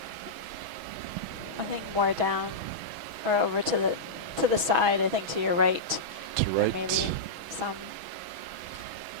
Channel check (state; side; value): late; left; 6.2 ms